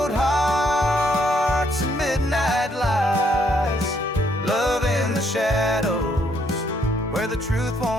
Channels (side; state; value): both; normal; correlation 0.71